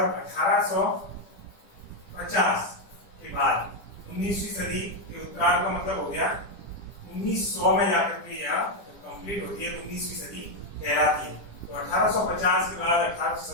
1850 के बाद, 19वीं सदी के उत्तरार्ध का मतलब हो गया 1900 में जाकर के या कंप्लीट होती है तो 19वीं सदी कहलाती है। तो 1850 के बाद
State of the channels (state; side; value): late; right; 10 ms